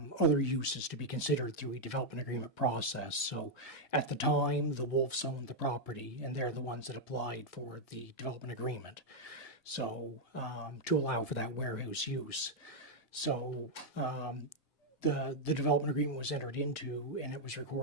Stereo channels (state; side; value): normal; both; correlation -0.02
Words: uses to be considered through a development agreement process. So at the time, the Wolves owned the property, and they're the ones that applied for the development agreement. So to allow for that warehouse use. So the development agreement was entered into, and it was